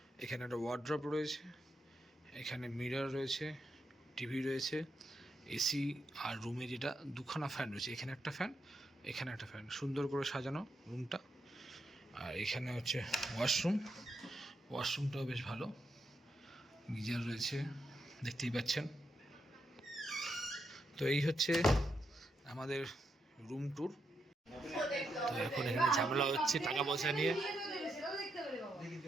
এখানে একটা ওয়ার্ড্রপ রয়েছে, এখানে মিরর রয়েছে, টিভি রয়েছে, এসি, আর রুমে যেটা দুখানা ফ্যান রয়েছে, এখানে একটা ফ্যান, এখানে একটা ফ্যান। সুন্দর করে সাজানো রুমটা। আর এখানে হচ্ছে ওয়াশরুমটাও বেশ ভালো, গিজার রয়েছে, দেখতেই পাচ্ছেন। তো এই হচ্ছে আমাদের রুম ট্যুর। তো এখন এখানে ঝামেলা হচ্ছে টাকা পয়সা নিয়ে।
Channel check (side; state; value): both; normal; correlation 0.82